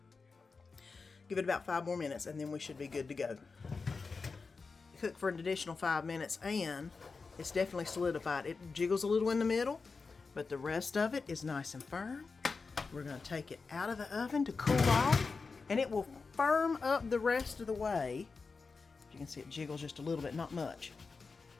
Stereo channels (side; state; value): right; quieter; 4.5 dB